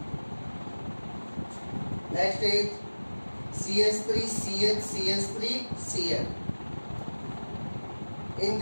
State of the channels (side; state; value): both; inverted; correlation -1.00